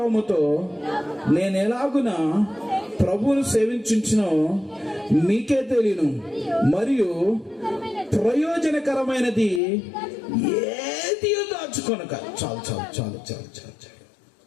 నేను ఎలాగున ప్రభువును సేవించునో మీకే తెలియను, మరియు ప్రయోజనకరమైనది ఏది దాచుకొనక. చాలు చాలు చాలు చాలు చాలు చాలు.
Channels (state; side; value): drops out; right; at 9.6 s